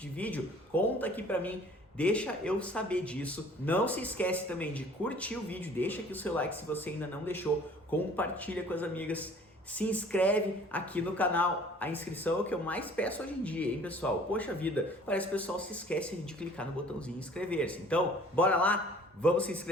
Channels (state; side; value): normal; both; correlation 0.52